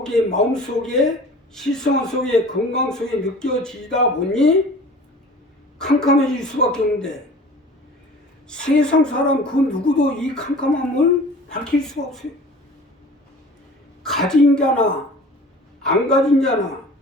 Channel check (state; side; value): normal; both; correlation 0.43